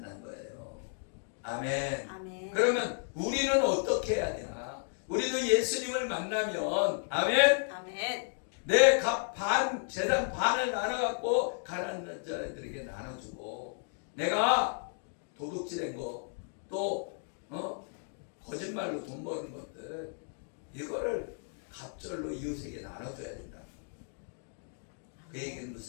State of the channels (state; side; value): silent; right; 56 dB below the other